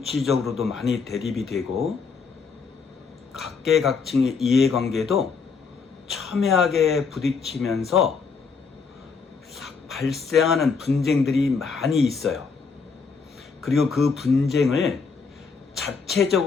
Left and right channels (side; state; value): right; quieter; 5.2 dB